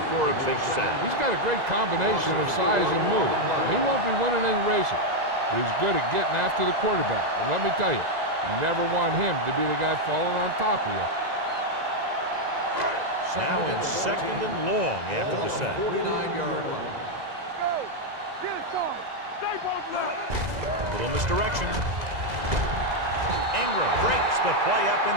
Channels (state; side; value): late; left; 2.0 ms